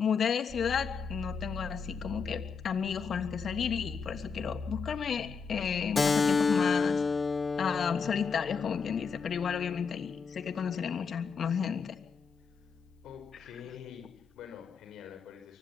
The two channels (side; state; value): right; quieter; 5.7 dB